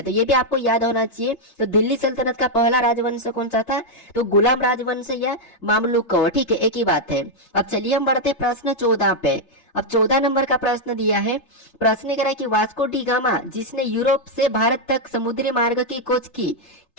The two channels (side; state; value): right; late; 3.3 ms